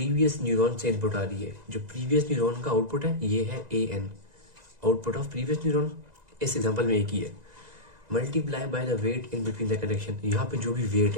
न्यूरॉन से इनपुट आ रही है, जो प्रीवियस न्यूरॉन का आउटपुट है ये है a n, output of previous neuron. इस एग्जांपल में एक ही है, multiply by the weight in between the connection. यहाँ पे जो भी वेट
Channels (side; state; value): left; late; 2.0 ms